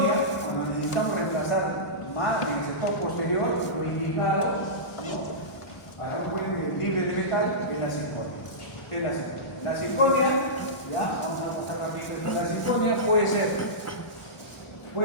cuando necesitamos reemplazar más en el sector posterior, lo indicado, ¿no? Para un puente libre de metal, es la circonia. Es la circonia. La circonia, ya, vamos a mostrar rápidamente, la circonia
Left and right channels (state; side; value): late; right; 1.0 ms